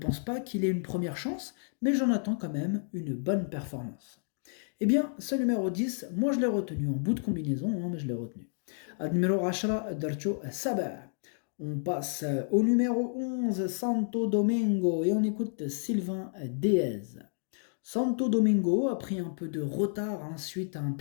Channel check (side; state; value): right; silent; digital silence